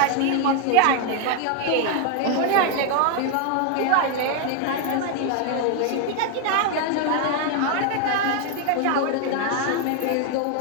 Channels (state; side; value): different; both; correlation 0.00